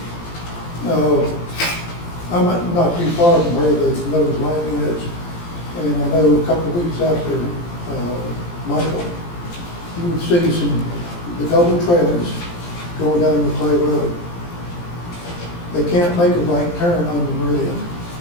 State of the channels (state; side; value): late; right; 17 ms